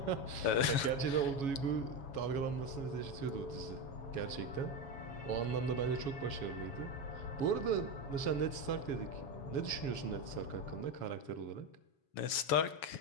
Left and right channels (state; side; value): late; right; 7.2 ms